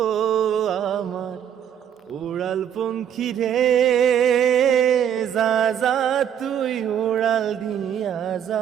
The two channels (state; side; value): quieter; left; 9.3 dB